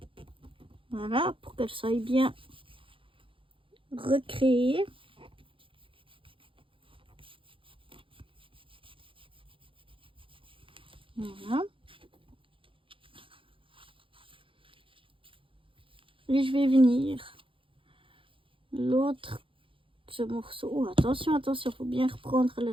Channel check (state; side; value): late; left; 0.25 ms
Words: Voilà, pour qu'elle soit bien recréée. Voilà. Et je vais venir l'autre, ce morceau. Oh, attention, faut bien reprendre le